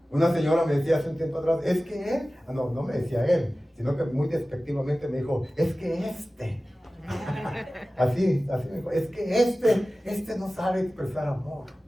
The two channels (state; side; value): normal; both; correlation 0.96